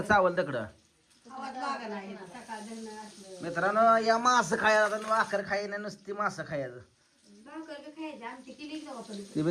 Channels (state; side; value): identical; both; correlation 1.00